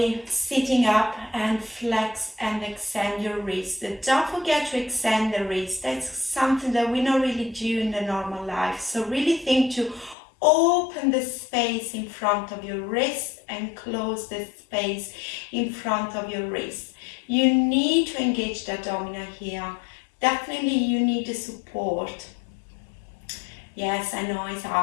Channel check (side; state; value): right; drops out; at 10.2 s